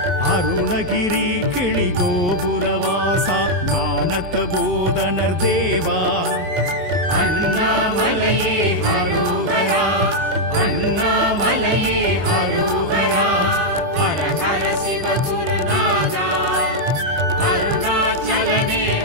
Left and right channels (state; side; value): late; left; 22 ms